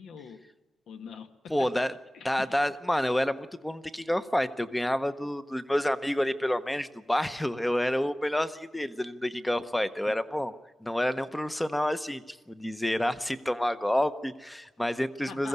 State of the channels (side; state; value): both; normal; correlation 0.98